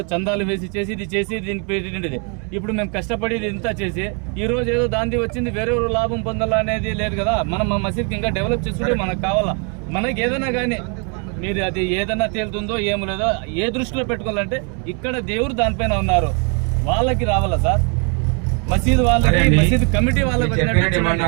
చందాలు వేసి చేసి దీనికి పెట్టిండేది. ఇప్పుడు మేము కష్టపడి ఇంత చేసి ఈ రోజు ఏదో దాంది వచ్చింది వేరే లాభం పొందాలా అనేది లేదు కదా. మనం మా మసీద్కి ఇంకా డెవలప్ చేసుకుంటే మనకు కావాలా. మనకి ఏదైనా కానీ మీరు అది ఏదైనా తేలుతుందో ఏమో లేదో ఏ దృష్టిలో పెట్టుకోవాలంటే ఇక్కడ దేవుడు దానిపైన ఉన్నారు, వాళ్ళకి రావాలా సార్. మసీద్ వాళ్ళకి మసీద్ కమిటీ వాళ్ళకి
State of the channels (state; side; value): quieter; left; 37.0 dB